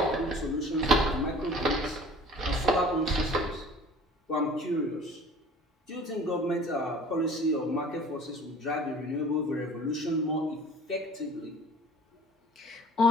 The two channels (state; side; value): normal; both; correlation 0.46